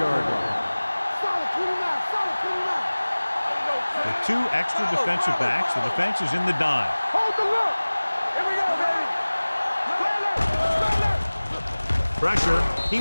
line. With 2 extra defensive backs, the defense is in the dime. Hold the look. Here we go, baby. Pressure. He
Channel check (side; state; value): both; inverted; correlation -1.00